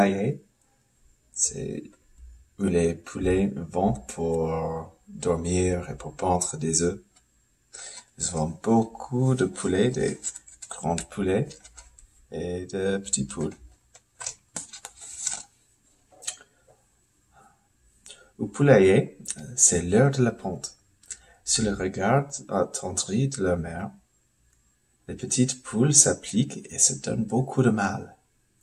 C'est où les poulets vont pour dormir et pour pondre des œufs. Nous avons beaucoup de poulets, des grands poulets et de petits poules. Au poulailler, c'est l'heure de la ponte. Sous le regard attendri de leur mère, les petites poules s'appliquent et se donnent beaucoup de mal.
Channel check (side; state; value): both; identical; correlation 1.00